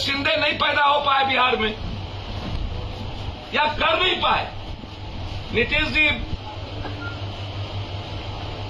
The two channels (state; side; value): identical; both; correlation 1.00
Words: नहीं पैदा हो पाए बिहार में या कर नहीं पाए। नीतीश जी